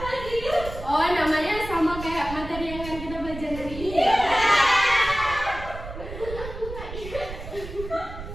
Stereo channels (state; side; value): noise; right; rumble, 11 dB below the sound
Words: Oh, namanya sama kayak materi yang akan kita belajar hari ini.